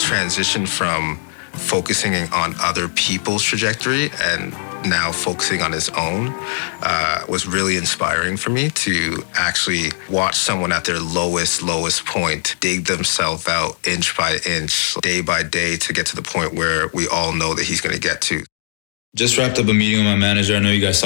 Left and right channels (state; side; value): silent; right; digital silence